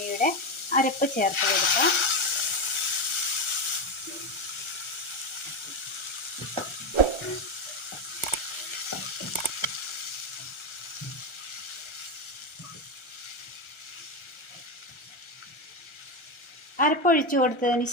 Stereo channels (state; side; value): late; right; 1.3 ms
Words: അരപ്പ് ചേർത്ത് കൊടുക്കാം. അരപ്പൊഴിച്ചു കൊടുത്തതിന്